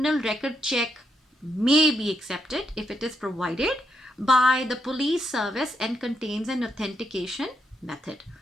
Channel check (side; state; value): both; normal; correlation 0.79